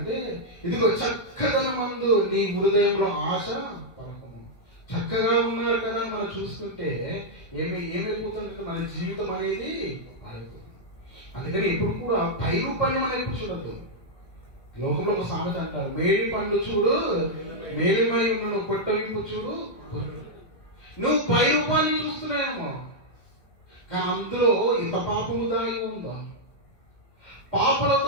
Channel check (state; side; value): late; right; 2.1 ms